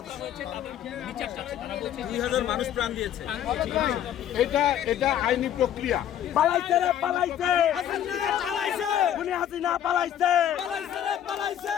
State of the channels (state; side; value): quieter; right; 10.5 dB